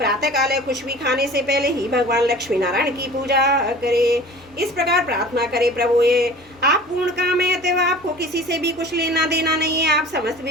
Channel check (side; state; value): both; normal; correlation 0.42